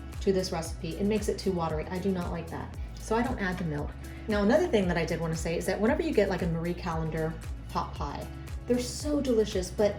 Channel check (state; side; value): identical; both; correlation 1.00